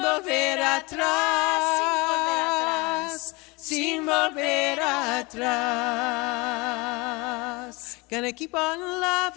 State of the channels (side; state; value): right; quieter; 25.8 dB